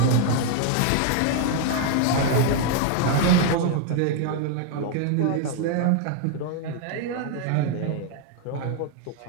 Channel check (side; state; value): both; different; correlation 0.00